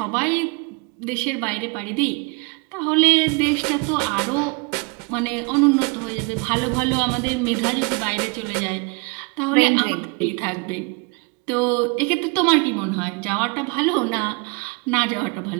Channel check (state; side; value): quieter; left; 31.3 dB